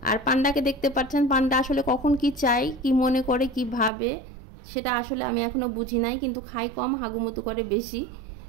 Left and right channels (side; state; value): left; drops out; at 3.9 s